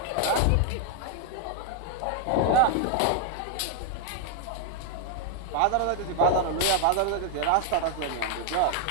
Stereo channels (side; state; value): both; different; correlation 0.00